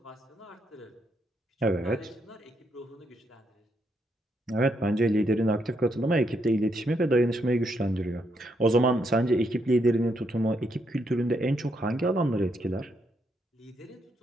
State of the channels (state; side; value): normal; both; correlation 0.77